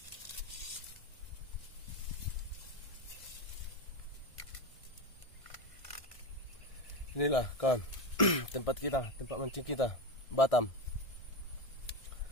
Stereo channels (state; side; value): late; right; 1.6 ms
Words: Inilah kawan, tempat kita, tempat mancing kita, Batam.